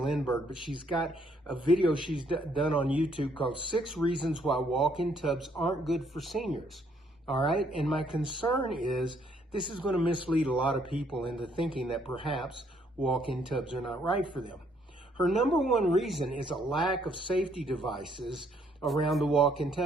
but she's got a video she's done on YouTube called 6 Reasons Why Walk-in Tubs Aren't Good for Seniors, all right? And my concern is this is going to mislead a lot of people into thinking that perhaps walk-in tubs are not right for them. Her number one reason is a lack of safety devices around the walk-in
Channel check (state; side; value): normal; both; correlation 0.68